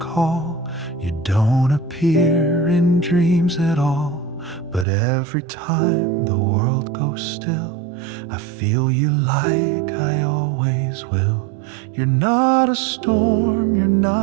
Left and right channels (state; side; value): drops out; left; at 4.9 s